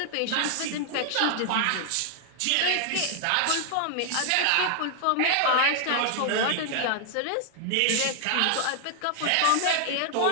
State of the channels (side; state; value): both; different; correlation 0.00